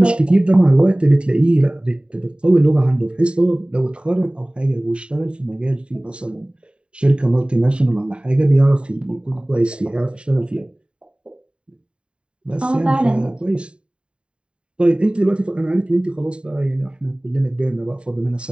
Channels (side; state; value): left; late; 0.053 ms